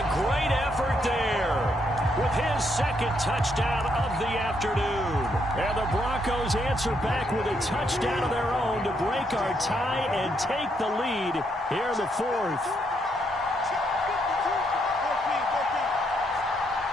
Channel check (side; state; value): both; normal; correlation 0.75